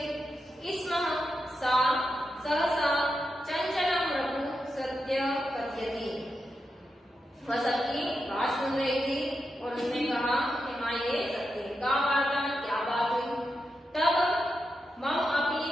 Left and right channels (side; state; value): both; normal; correlation 0.87